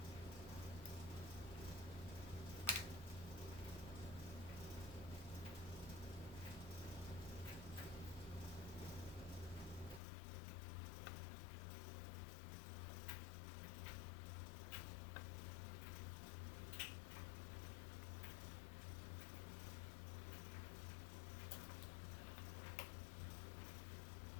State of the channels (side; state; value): right; drops out; at 10.0 s